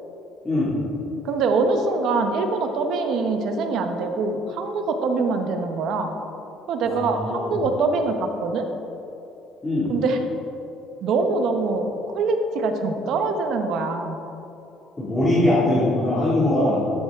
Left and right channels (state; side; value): normal; both; correlation 0.61